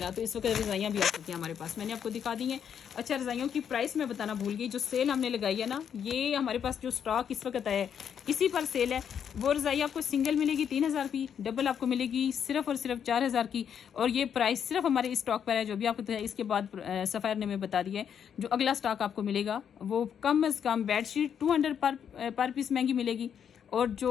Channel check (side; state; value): right; quieter; 8.2 dB